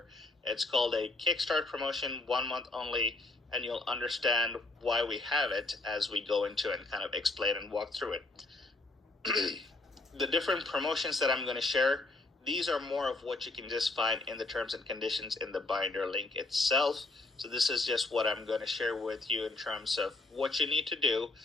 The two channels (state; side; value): quieter; right; 3.1 dB